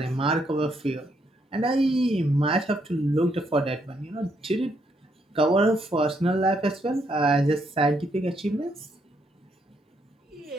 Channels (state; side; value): normal; both; correlation 0.75